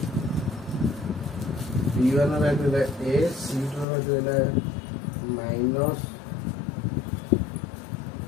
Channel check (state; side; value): drops out; right; at 3.9 s